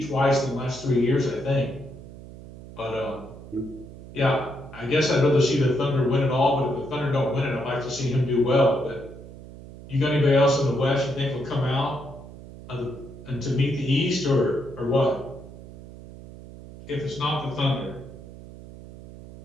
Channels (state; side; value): noise; right; hum, 16 dB below the sound